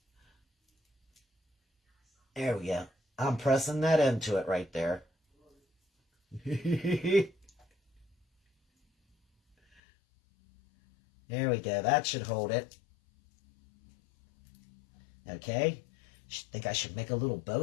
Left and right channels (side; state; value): right; drops out; at 9.8 s